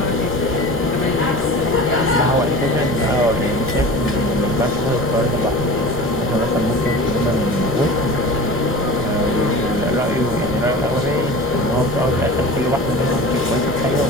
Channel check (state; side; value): noise; right; rumble, 15 dB below the sound